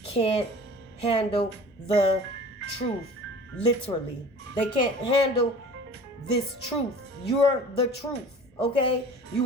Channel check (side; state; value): both; normal; correlation 0.43